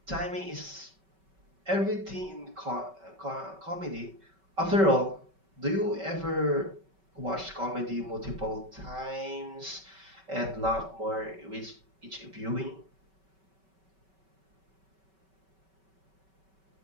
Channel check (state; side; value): late; left; 5.2 ms